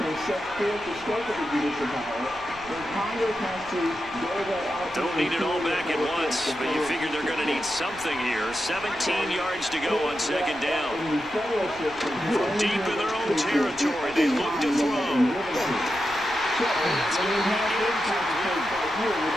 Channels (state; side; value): noise; left; rumble, 21 dB below the sound